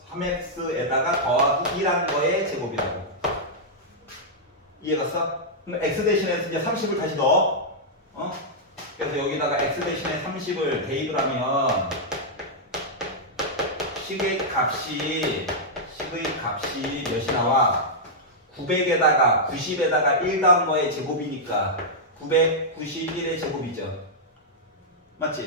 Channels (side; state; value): both; normal; correlation -0.07